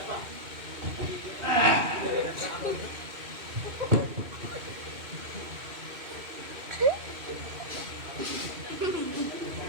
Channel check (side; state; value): left; late; 2.6 ms